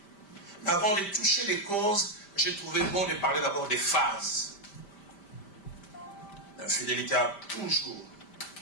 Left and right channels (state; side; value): late; right; 5.1 ms